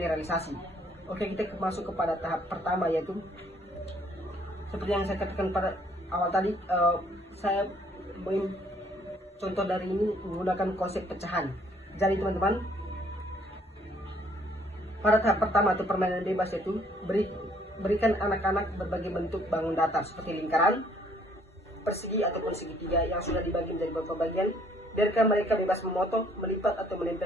Oke, kita masuk kepada tahap pertama, yaitu seperti yang saya katakan pada awal tadi, saya contoh dari ini menggunakan konsep pecahan. Jadi teman-teman, pada tahap pertama atau permainan bebas itu berikan anak-anak berbagai bentuk bangun datar seperti lingkaran, persegi ataupun segitiga yang sudah dibagi menjadi beberapa bagian. Biarkan mereka bebas memotong, melipat atau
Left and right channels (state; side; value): normal; both; correlation 0.63